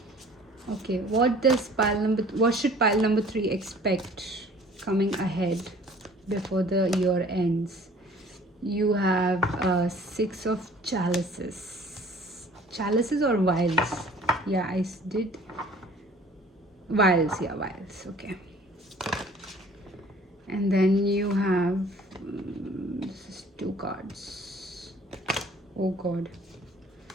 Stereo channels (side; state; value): both; normal; correlation 0.51